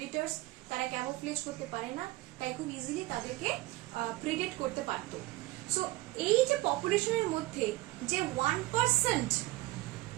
তারা ক্যামোফ্লেজ করতে পারে না, তাই খুব ইজিলি তাদেরকে প্রেডেট করতে পারতো। সো এই যে পপুলেশনের মধ্যে যে 1%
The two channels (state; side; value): quieter; left; 19.0 dB